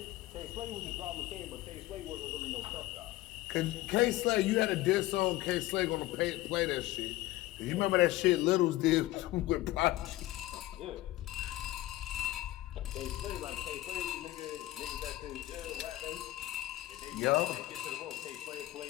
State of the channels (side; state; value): right; quieter; 16.8 dB